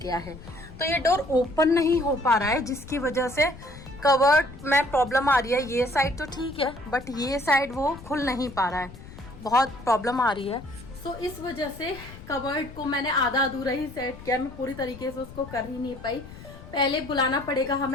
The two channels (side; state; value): left; noise; rumble, 16 dB below the sound